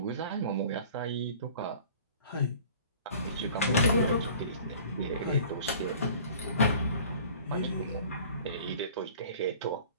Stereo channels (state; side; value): inverted; both; correlation -0.47